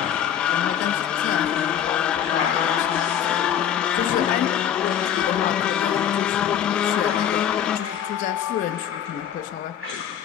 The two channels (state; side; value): quieter; right; 9.6 dB